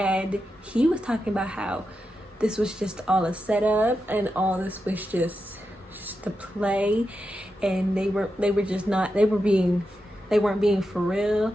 he was talking about how this was just all a setup and all this was just to play, and they weren't being for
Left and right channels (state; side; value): normal; both; correlation 0.88